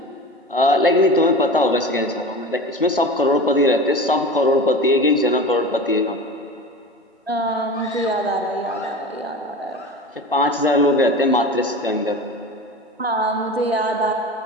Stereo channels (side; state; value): both; normal; correlation 0.32